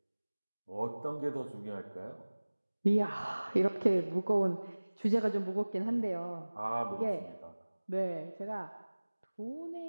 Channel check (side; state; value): both; inverted; correlation -1.00